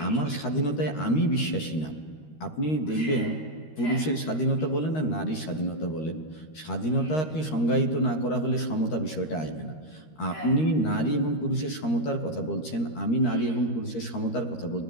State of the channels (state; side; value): late; right; 13 ms